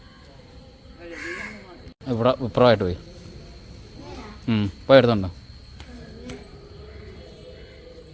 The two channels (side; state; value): both; identical; correlation 1.00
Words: ഇവിടെ ഇപ്പുറമായിട്ട് പോയി എടുത്തുണ്ടോ?